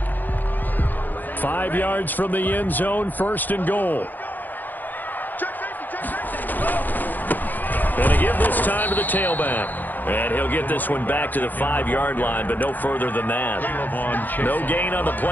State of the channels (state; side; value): late; right; 0.086 ms